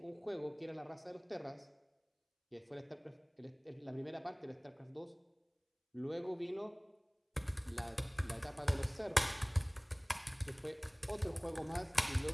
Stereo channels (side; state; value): both; identical; correlation 1.00